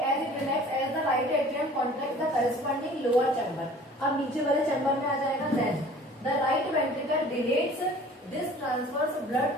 as it relax as the right atrium contract the corresponding lower chamber. अब नीचे वाले चैम्बर में आ जाएगा। Then the right ventricle dilates this transfers blood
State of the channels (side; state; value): both; normal; correlation 0.48